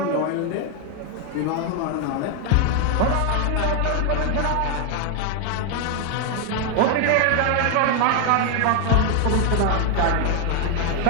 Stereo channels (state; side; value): different; both; correlation 0.01